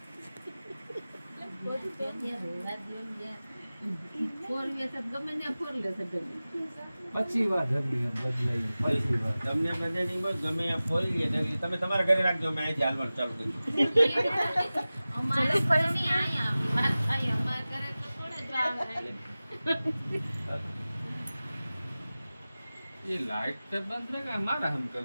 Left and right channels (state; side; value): inverted; both; correlation -0.97